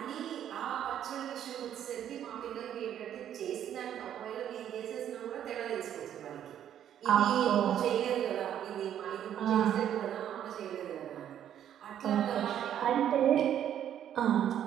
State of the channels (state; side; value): quieter; left; 10.2 dB